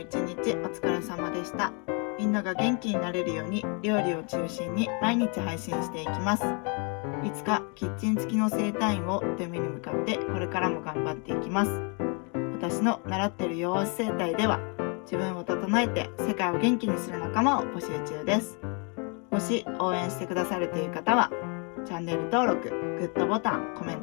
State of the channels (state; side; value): quieter; right; 35.8 dB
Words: 一日お疲れ様でした。みんなが元気になれるように料理を中心に毎日配信していきます。いつかキッチン付きの整体院をという目に向かってこれからも頑張っていきます。私の習っている弱押し整体では自分を整えて世界を元気にする仲間を募集中です。もし応援してくださるという方はチャンネル登録、グッドボタン、コメン